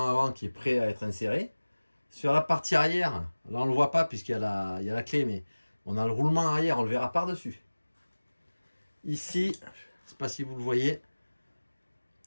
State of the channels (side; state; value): both; inverted; correlation -1.00